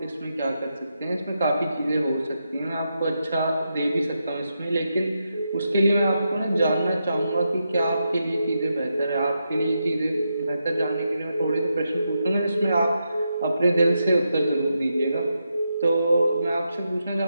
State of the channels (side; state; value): both; inverted; correlation -0.85